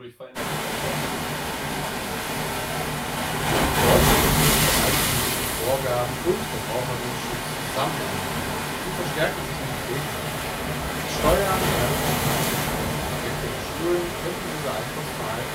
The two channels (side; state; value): both; identical; correlation 1.00